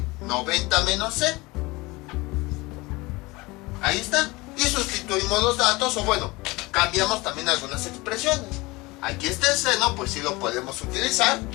90 menos C. Ahí está. Y sustituimos los datos, o bueno, cambiamos también algunas expresiones. Aquí está el seno, pues sí lo podemos utilizar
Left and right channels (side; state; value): right; quieter; 22.8 dB